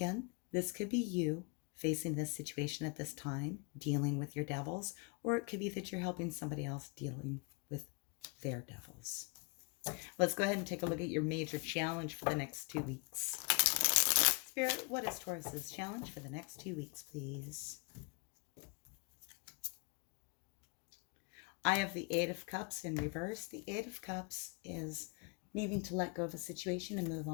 this could be you facing this situation at this time, dealing with your devils, or it could be that you're helping somebody else dealing with their devils. Let's go ahead and take a look at your major challenge for the next 2 weeks. Spirit, what is Taurus's challenge for the next 2 weeks, please? I have the Eight of Cups in reverse. The Eight of Cups is needing to let go of a situation and move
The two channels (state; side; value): quieter; right; 33.4 dB